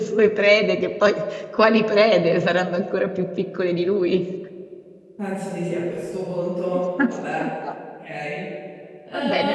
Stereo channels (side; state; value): both; identical; correlation 1.00